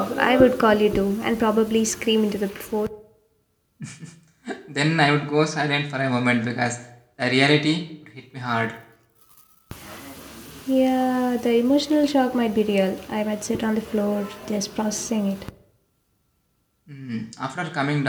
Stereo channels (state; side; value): identical; both; correlation 1.00